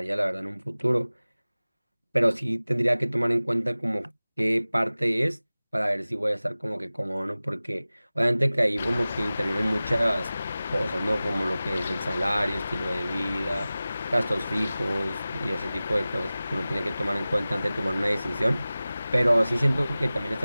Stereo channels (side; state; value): both; inverted; correlation -0.97